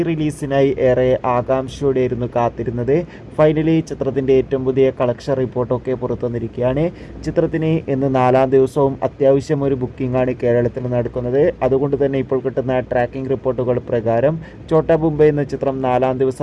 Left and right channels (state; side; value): identical; both; correlation 1.00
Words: ഏറെ ആകാംക്ഷയോടെയായിരുന്നു കാത്തിരുന്നത്. ഫൈനലി ചിത്രത്തിൻ്റെ ഏറ്റവും പുതിയ കളക്ഷൻ റിപ്പോർട്ടൊക്കെ പുറത്തു വന്നിരിക്കുകയാണ്. ചിത്രത്തിന് ഇന്ന് 4-ാം ദിവസവും അത്യാവശ്യം ഒരു ബുക്കിംഗ് ആണ് കേരളത്തിൽ നടക്കുന്നത്. അതുകൊണ്ട് തന്നെ ഇപ്പോൾ കിട്ടുന്ന ട്രാക്കിംഗ് റിപ്പോർട്ടുകൾ പ്രകാരം ഛോട്ടാ മുംബൈ എന്ന ചിത്രം 4-ാം